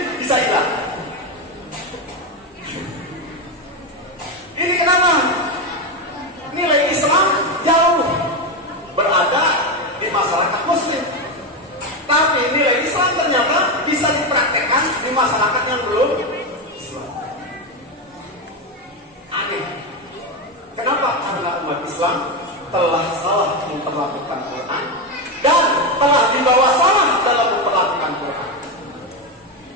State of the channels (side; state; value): both; normal; correlation 0.12